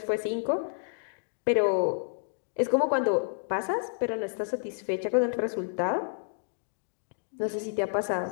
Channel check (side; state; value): right; silent; digital silence